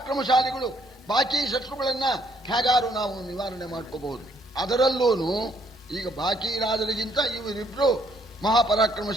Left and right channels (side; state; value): both; normal; correlation 0.68